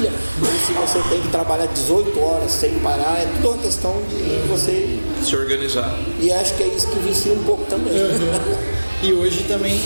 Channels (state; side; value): inverted; both; correlation -1.00